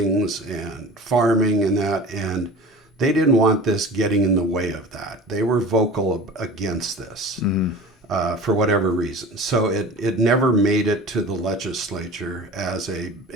and farming and that, and they didn't want this getting in the way of that. They were vocal against this for whatever reason. So it never made it to the legislature as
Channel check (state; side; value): normal; both; correlation 0.38